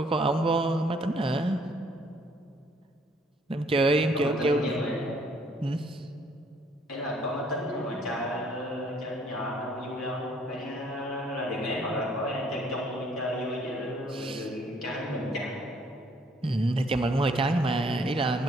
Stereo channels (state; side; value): normal; both; correlation 0.63